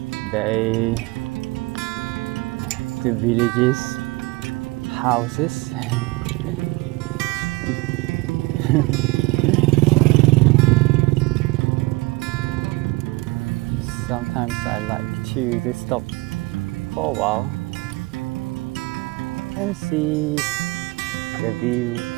the villages, houses. Sometimes I like to just stop for a while and see the view,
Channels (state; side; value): quieter; left; 23.7 dB